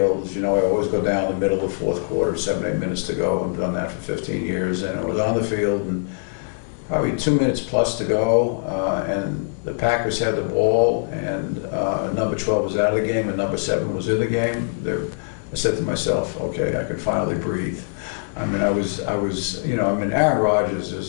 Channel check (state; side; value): silent; right; digital silence